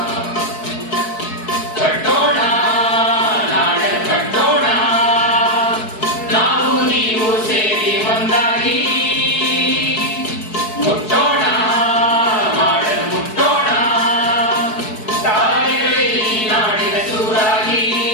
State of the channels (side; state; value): right; late; 4.6 ms